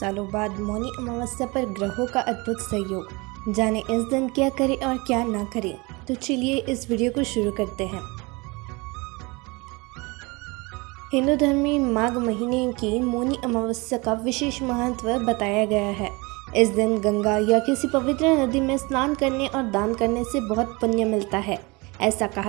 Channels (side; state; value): left; quieter; 26.1 dB